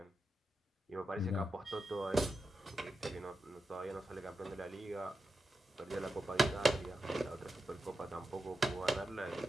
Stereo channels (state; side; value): normal; both; correlation 0.89